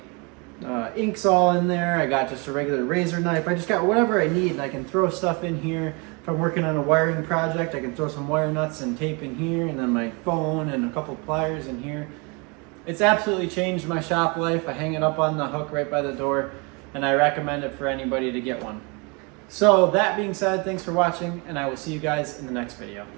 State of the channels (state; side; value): quieter; left; 30.6 dB